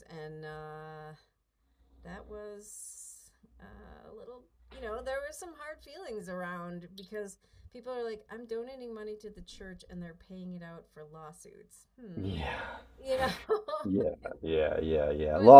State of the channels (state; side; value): identical; both; correlation 1.00